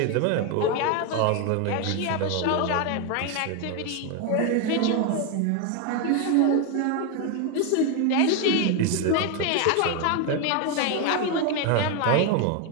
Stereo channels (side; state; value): both; different; correlation 0.01